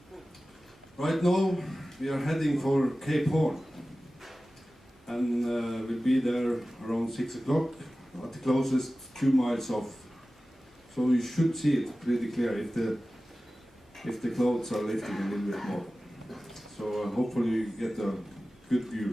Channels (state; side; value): normal; both; correlation 0.96